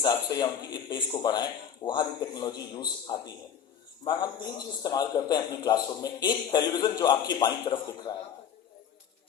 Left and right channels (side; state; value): right; quieter; 8.4 dB